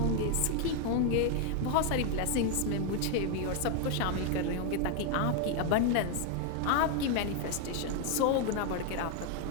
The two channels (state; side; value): different; both; correlation 0.01